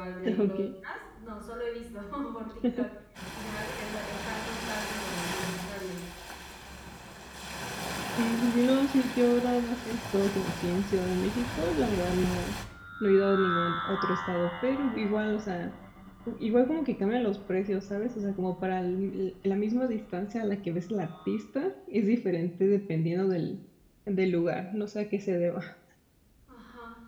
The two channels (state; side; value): identical; both; correlation 1.00